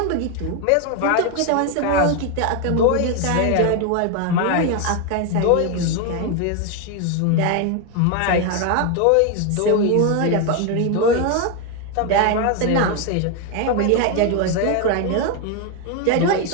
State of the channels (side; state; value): both; different; correlation 0.01